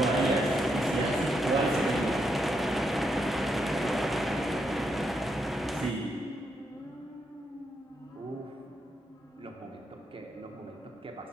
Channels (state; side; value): normal; both; correlation 0.80